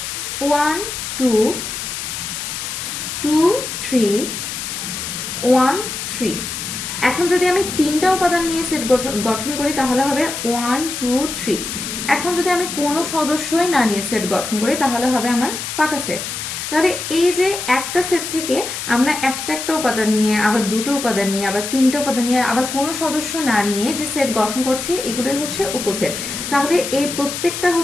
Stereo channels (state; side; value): noise; left; hiss, 6 dB below the sound